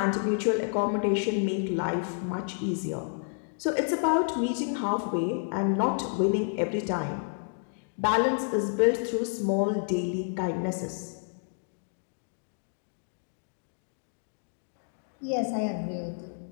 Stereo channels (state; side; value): silent; right; digital silence